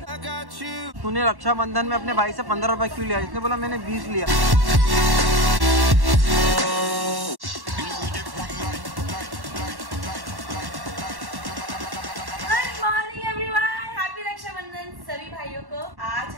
तूने रक्षाबंधन में अपने भाई से 15 रुपए क्यों लिया? इसने बोला मैंने 20 लिया। सभी भाइयों को आज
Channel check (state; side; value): late; left; 1.1 ms